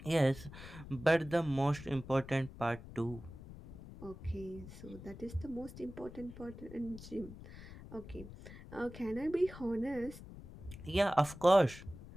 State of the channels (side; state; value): left; noise; rumble, 14 dB below the sound